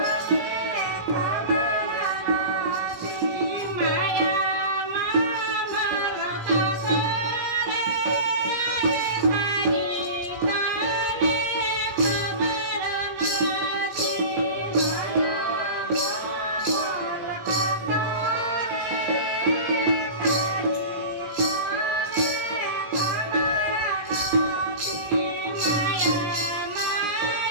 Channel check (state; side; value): late; left; 17 ms